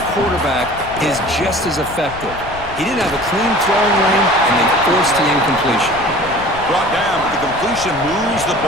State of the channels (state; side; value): noise; left; rumble, 15 dB below the sound